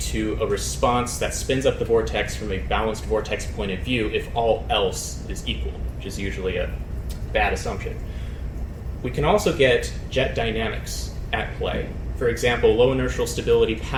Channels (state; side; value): identical; both; correlation 1.00